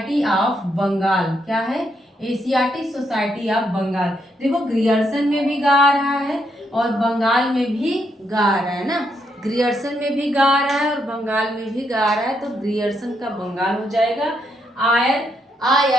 ऑफ बंगाल। क्या है? Asiatic society of Bengal. देखो ग्रियर्सन में भी गा रहा है और बंगाल में भी गा रहा है ना। ग्रियर्सन में भी गा रहा है और बंगाल में भी गा रहा है, तो ग्रियर्सन का बंगाल हो जाएगा।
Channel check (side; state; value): both; normal; correlation 0.77